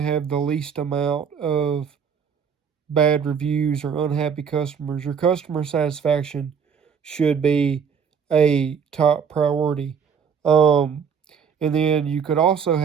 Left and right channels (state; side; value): quieter; left; 6.8 dB